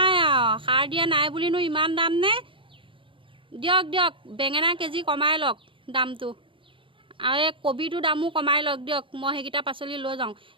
নাই বুলিনো ইমান দাম নে দিয়ক বেঙেনা কেজি কমাই লওক দামটো আৰু এই কবিটো দামো কমাই লওক দিয়ক মই সেইকেইটা পাচলি লৈ যাওঁ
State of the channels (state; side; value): late; left; 0.25 ms